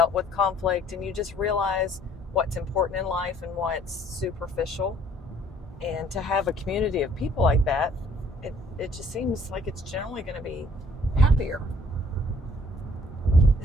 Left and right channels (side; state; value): both; normal; correlation 0.59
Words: with conflict, and you just realize what's important in life and what's superficial. And to have a community of people like that, it just seems like it's generally going to be happier.